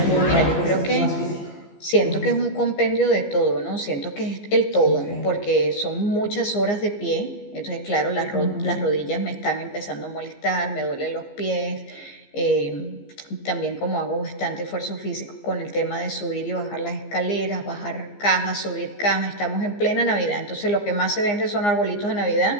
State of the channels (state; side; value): late; right; 15 ms